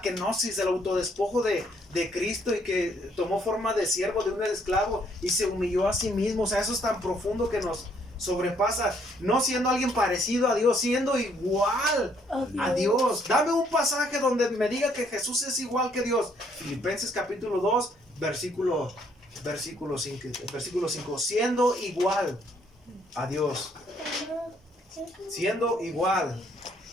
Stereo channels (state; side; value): normal; both; correlation 0.67